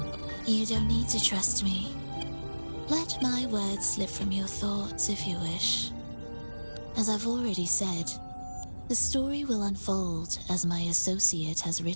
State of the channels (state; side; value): inverted; both; correlation -1.00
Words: You don't need to trust me. Let my words slip from your thoughts if you wish. As I've already said, the story will unfold as my associate has